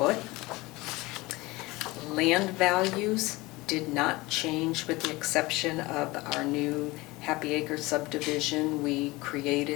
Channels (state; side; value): quieter; right; 21.6 dB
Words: Land values did not change with the exception of our new Happy Acre subdivision. We